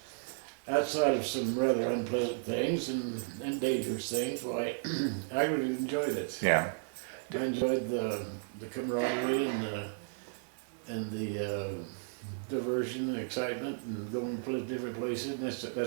outside of some rather unpleasant things and dangerous things, well, I really enjoyed it. Yeah. I enjoyed the camaraderie and the diversion and excitement and going different places. And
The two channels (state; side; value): silent; left; digital silence